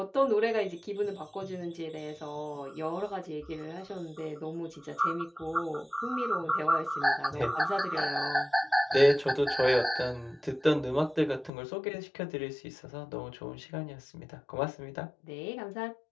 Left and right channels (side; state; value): right; drops out; at 11.5 s